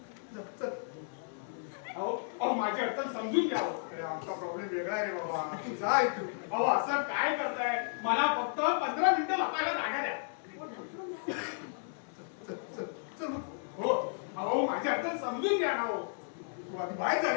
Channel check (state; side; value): silent; right; digital silence